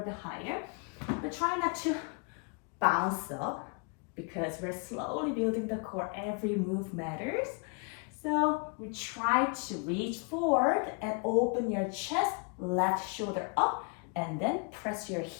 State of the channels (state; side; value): quieter; right; 35.4 dB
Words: bit higher. But try not to bounce up because we're slowly building the core. Every move matters. So we try to reach forward and open your chest, left shoulder up, and then press your